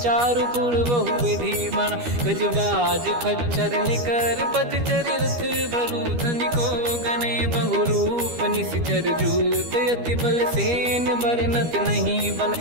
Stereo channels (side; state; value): left; late; 12 ms